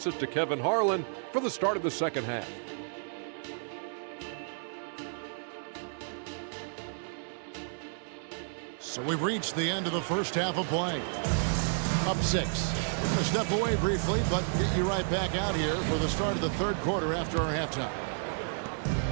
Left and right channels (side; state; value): left; silent; 57 dB below the other